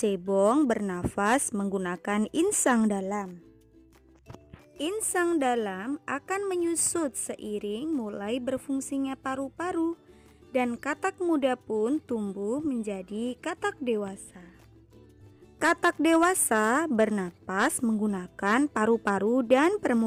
bernafas menggunakan insang dalam. Insang dalam akan menyusut seiring mulai berfungsinya paru-paru, dan katak muda pun tumbuh menjadi katak dewasa. Katak dewasa bernapas menggunakan paru-paru dan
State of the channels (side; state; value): both; identical; correlation 1.00